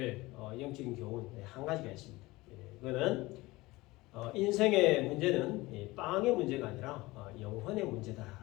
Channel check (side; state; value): right; quieter; 20.6 dB